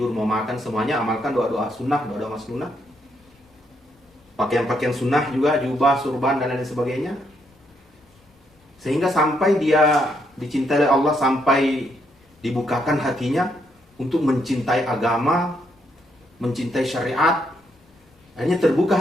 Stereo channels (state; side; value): normal; both; correlation 0.76